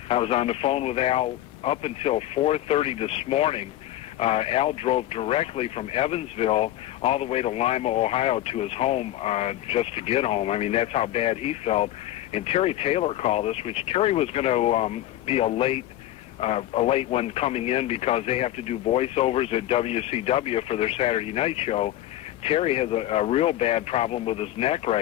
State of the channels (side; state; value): right; quieter; 13.9 dB